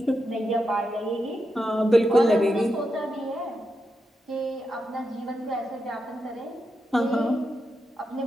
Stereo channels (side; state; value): both; normal; correlation 0.86